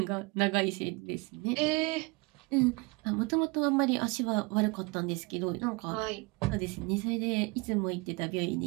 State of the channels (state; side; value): quieter; left; 27.0 dB